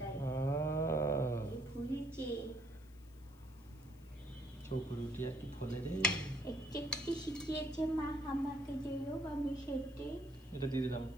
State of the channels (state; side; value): noise; left; hiss, 28 dB below the sound